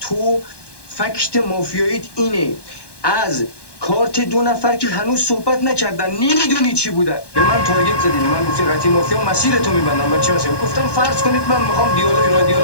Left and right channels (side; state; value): right; late; 1.2 ms